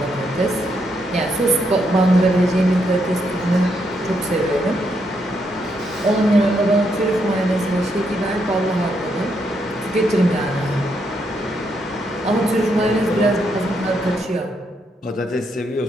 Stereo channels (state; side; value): normal; both; correlation 0.78